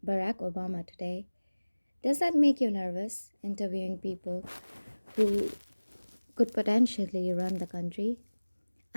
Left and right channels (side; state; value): both; inverted; correlation -1.00